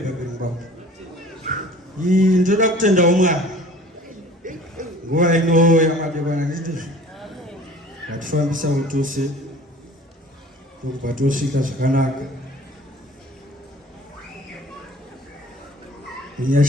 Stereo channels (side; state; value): both; normal; correlation 0.47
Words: ngwako. Ndoda kutendawo Mwari. Nguva ino yamadekwana ndizvo vatifambisa utose ndokubva tosvika zvakanaka